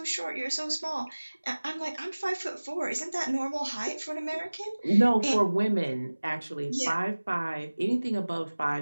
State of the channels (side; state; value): both; inverted; correlation -1.00